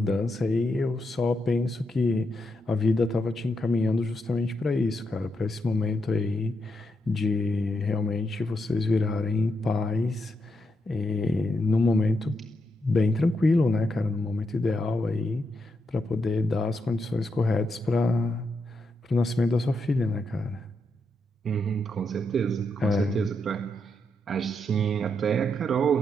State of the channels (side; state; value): both; normal; correlation 0.82